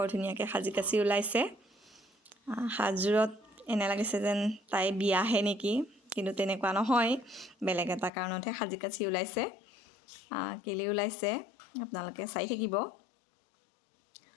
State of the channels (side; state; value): right; drops out; at 8.1 s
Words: ধুনীয়াকৈ সাজি কাচি ওলাইছে সাজযোৰত এনে লাগিছে যেন তাই বিয়াহে নেকি কিন্তু তেনেকুৱা নহয় বেলেগ এটা কাৰণতহে সাজি কাচি ওলাইছে কেলৈ ওলাইছে আপোনালোকে চাই থাকিব